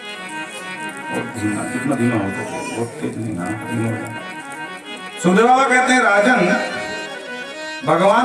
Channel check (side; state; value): both; identical; correlation 1.00